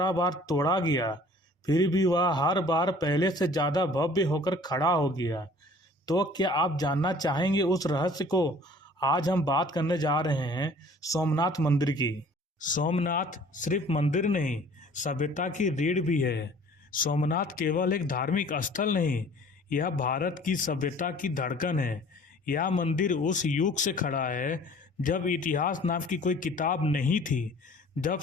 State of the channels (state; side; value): normal; both; correlation 0.51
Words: बार तोड़ा गया फिर भी वह हर बार पहले से ज्यादा भव्य होकर खड़ा हो गया, तो क्या आप जानना चाहेंगे उस रहस्य को? आज हम बात करने जा रहे हैं सोमनाथ मंदिर की। सोमनाथ सिर्फ मंदिर नहीं, सभ्यता की रीढ़ भी है। सोमनाथ केवल एक धार्मिक स्थल नहीं, यह भारत की सभ्यता की धड़कन है। यह मंदिर उस युग से खड़ा है जब इतिहास नाम की कोई किताब नहीं थी, जब